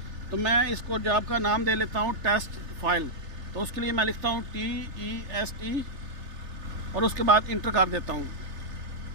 तो मैं इसको जॉब का नाम दे लेता हूँ टेस्ट फाइल। तो उसके लिए मैं लिखता हूँ TEST और उसके बाद इंटर कर देता हूँ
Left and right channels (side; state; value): left; late; 3.3 ms